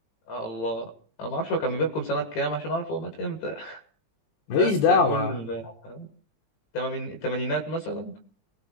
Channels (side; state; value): right; late; 20 ms